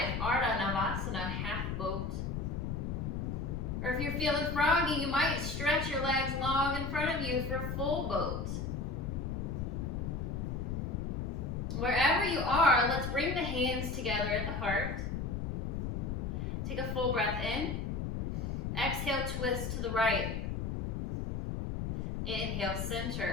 Ardha Navasana, half boat. Or if you're feeling froggy, you might stretch your legs long in front of you for full boat. Wherever you are, let's bring the hands together at the heart. Take a full breath in. Exhale, twist to the right. Inhale,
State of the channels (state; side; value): noise; left; rumble, 2 dB below the sound